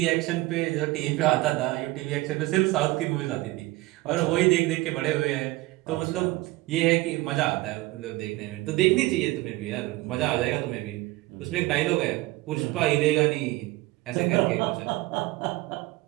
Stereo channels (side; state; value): left; quieter; 19.6 dB